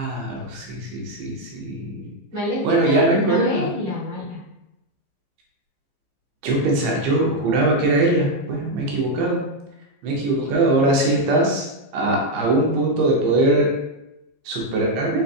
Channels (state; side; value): late; left; 15 ms